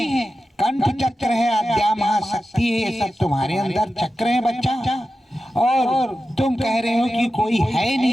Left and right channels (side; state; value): both; normal; correlation 0.92